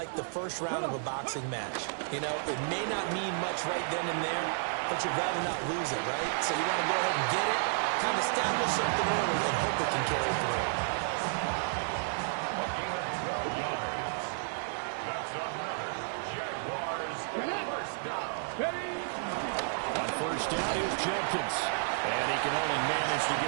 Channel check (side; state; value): left; silent; 57 dB below the other